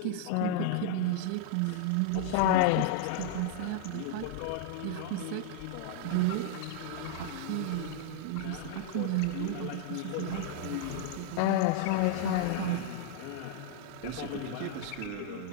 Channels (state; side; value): different; both; correlation -0.01